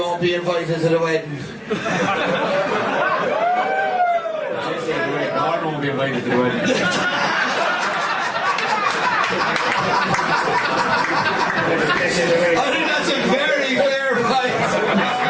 be invited to the wedding. Gordon won't be invited to the wedding. I think that's a very fair fight.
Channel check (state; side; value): identical; both; correlation 1.00